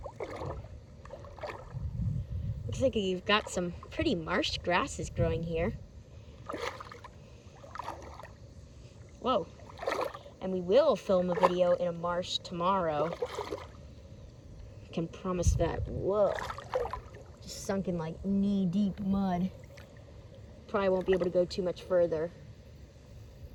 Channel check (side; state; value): both; identical; correlation 1.00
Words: Looks like you've got some pretty marsh grasses growing here. Whoa. And we will film a video in a marsh tomorrow. I can promise that. Whoa. Just sunk in like knee-deep mud. Probably won't be able to go too much further.